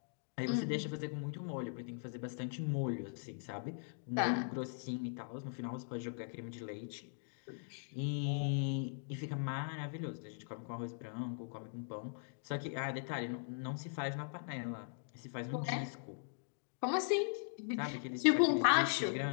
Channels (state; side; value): silent; right; digital silence